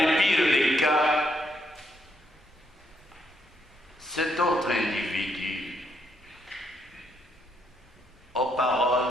pires des cas, cet autre individu aux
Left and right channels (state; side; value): normal; both; correlation 0.75